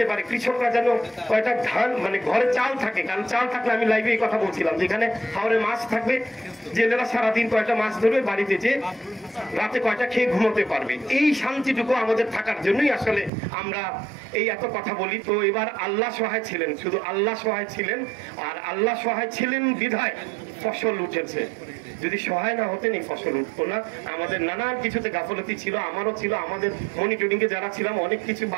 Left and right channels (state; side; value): drops out; left; at 13.3 s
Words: পারে, কৃষকরা যেন কয়টা ধান মানে ঘরে চাল থাকে, কারণ চাল থাকলে আমি লাইভে এই কথা বলছিলাম যেখানে হাওরে মাছ থাকবে, জেলেরা সারাদিন কয়টা মাছ ধরবে, বাড়িতে যে রাতে কয়টা খেয়ে ঘুমোতে পারবে, এই শান্তিটুকু আমাদের থাকার জন্যই আসলে আমরা এই এত কথা বলি। তো এবার আল্লাহ সহায় ছিলেন, শুধু আল্লাহ সহায় ছিলেন, আর আল্লাহ সহায় ছিলেন বিধায় ফসল উঠেছে। যদি সহায় না হতেন এই ফসল উঠতো না। আমাদের নানান কিছুতে গাফলতি ছিল, আমারও ছিল, আমাদের মনিটরিং এ যারা ছিলাম অনেক কিছু